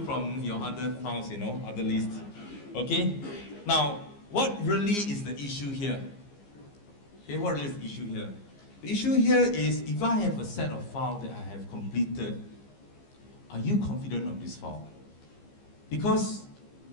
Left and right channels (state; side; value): late; right; 15 ms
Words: from your other files, other lists. Okay? Now, what really is the issue here? Okay, what really is the issue here? The issue here is, if I have a set of files that I have completed, are you confident of this file? Because